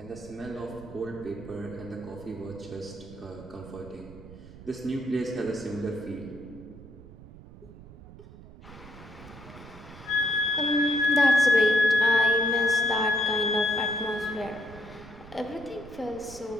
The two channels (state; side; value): noise; right; rumble, 18 dB below the sound